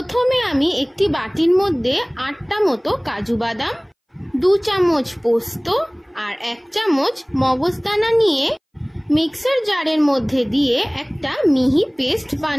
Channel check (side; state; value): both; identical; correlation 1.00